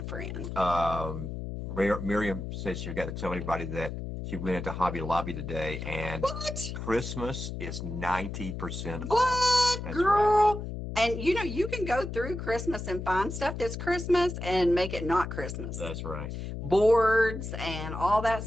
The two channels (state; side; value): noise; left; hum, 6 dB below the sound